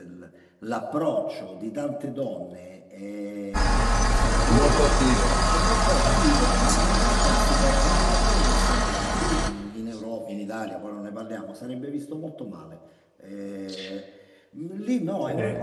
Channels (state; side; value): identical; both; correlation 1.00